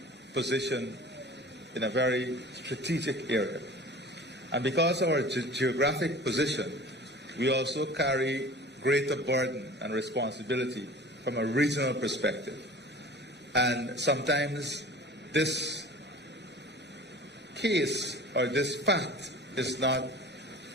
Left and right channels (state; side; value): normal; both; correlation 0.41